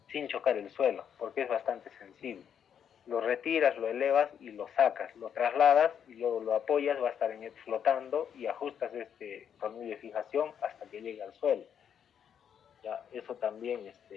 sin chocar el suelo, porque es bastante sensible. Lo retiras, lo elevas y lo sacas, lo trasladas y luego lo apoyas, va a estar flotando y ajustas este tornillo de fijación hasta que llegue al suelo. Ya, eso también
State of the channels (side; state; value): right; quieter; 8.3 dB